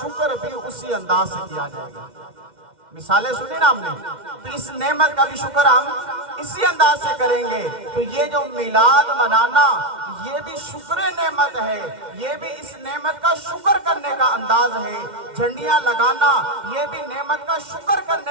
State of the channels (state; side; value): late; left; 2.1 ms